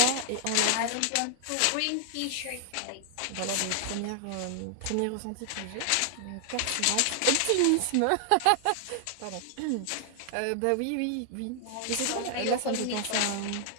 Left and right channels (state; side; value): different; both; correlation 0.00